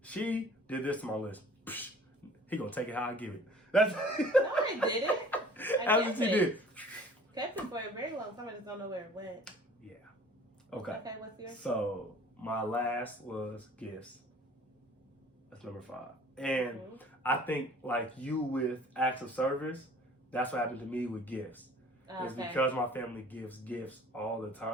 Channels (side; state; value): both; normal; correlation 0.50